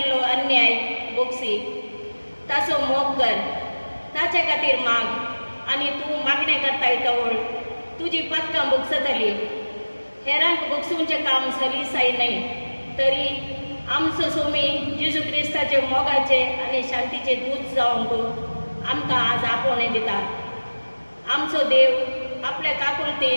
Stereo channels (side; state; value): both; inverted; correlation -1.00